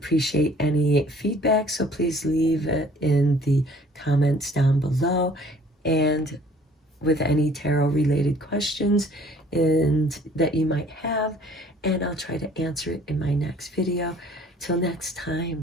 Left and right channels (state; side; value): normal; both; correlation 0.55